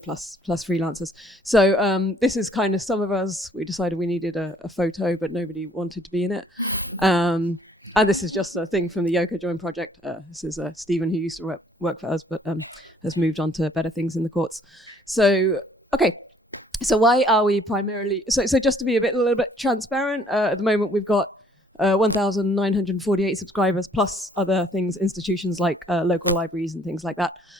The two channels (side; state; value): both; normal; correlation 0.60